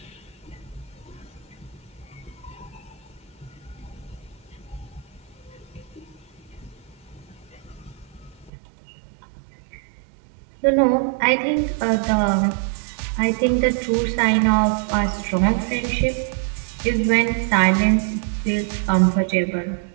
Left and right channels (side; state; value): left; drops out; at 8.5 s